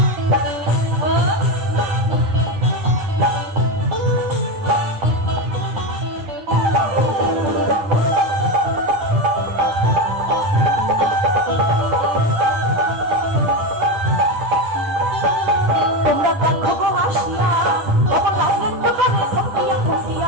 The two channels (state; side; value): late; left; 9.9 ms